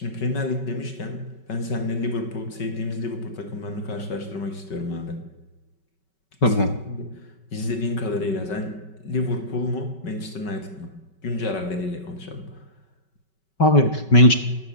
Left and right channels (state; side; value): late; right; 5.3 ms